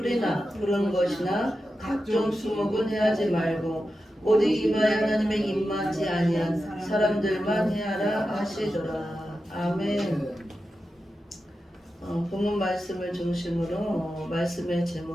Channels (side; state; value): both; normal; correlation 0.91